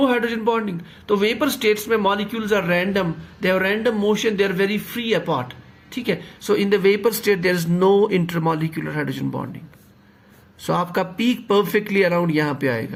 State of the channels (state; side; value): identical; both; correlation 1.00